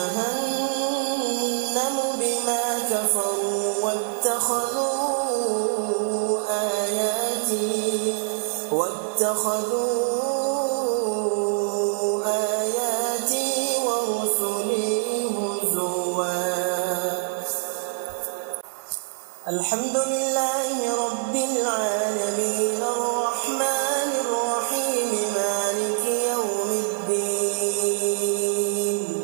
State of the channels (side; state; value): left; silent; 55 dB below the other